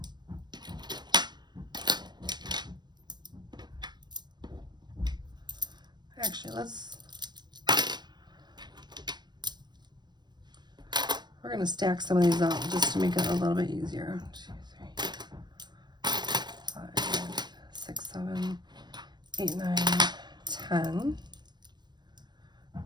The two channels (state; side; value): late; left; 0.21 ms